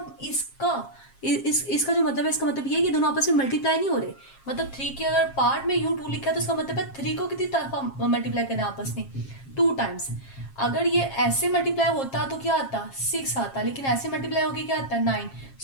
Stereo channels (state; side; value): late; right; 7.4 ms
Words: इसका जो मतलब है, इसका मतलब ये है कि दोनों आपस में मल्टीप्लाई नहीं हो रहे। मतलब 3 के अगर पार्ट में u2 लिखा है तो इसका मतलब है 3 को कितनी तरफ मल्टीप्लाई करना है आपस में, 2 टाइम्स। अगर ये ऐसे मल्टीप्लाई होता तो क्या आता, 6 आता, लेकिन ऐसे मल्टीप्लाई होके क्या आता है, 9।